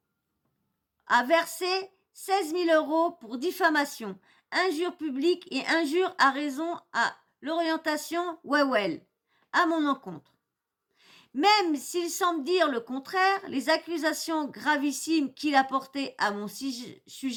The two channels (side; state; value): both; identical; correlation 1.00